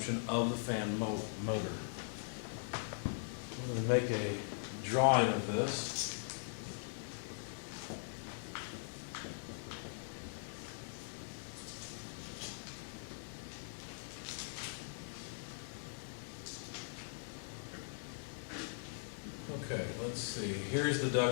of the fan motor. I'm going to make a drawing of this. Okay, let's see. Here's the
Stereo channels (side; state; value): right; silent; 50 dB below the other